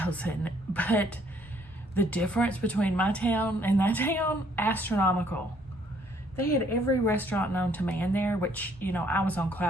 but the difference between my town and that town, astronomical. They had every restaurant known to man there, which, you know, I was on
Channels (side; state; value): both; normal; correlation 0.65